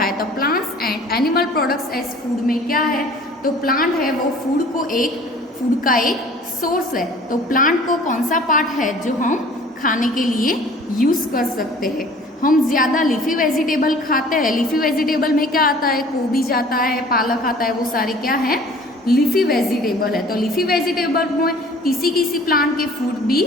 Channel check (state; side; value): normal; both; correlation 0.49